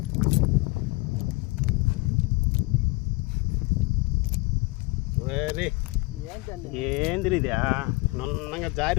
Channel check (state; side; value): quieter; right; 24.6 dB